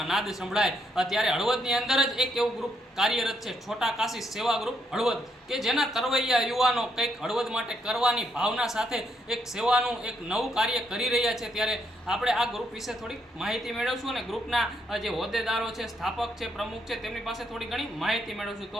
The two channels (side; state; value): both; normal; correlation 0.76